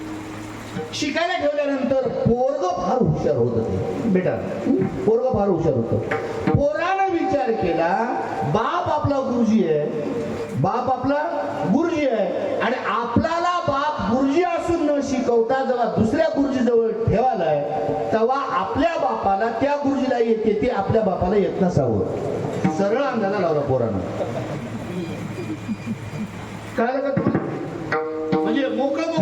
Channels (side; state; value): both; identical; correlation 1.00